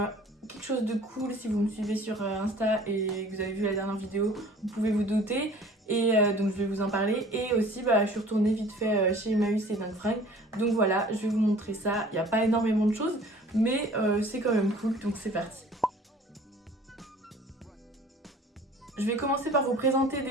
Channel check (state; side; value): normal; both; correlation 0.48